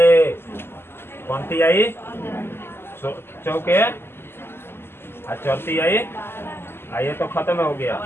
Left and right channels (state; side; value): late; right; 0.11 ms